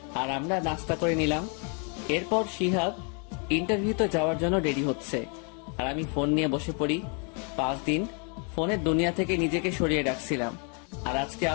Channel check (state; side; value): quieter; right; 37.9 dB